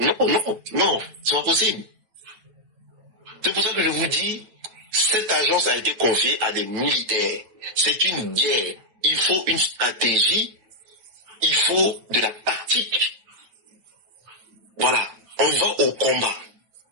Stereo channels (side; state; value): left; late; 9.1 ms